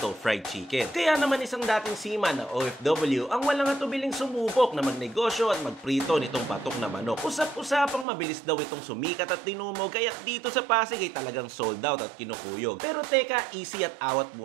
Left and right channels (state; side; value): drops out; left; at 8.1 s